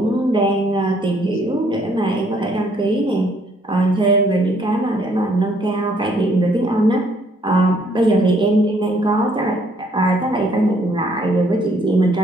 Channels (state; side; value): normal; both; correlation 0.65